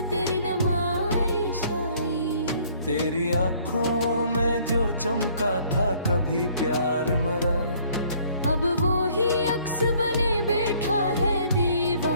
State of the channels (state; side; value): inverted; both; correlation -0.60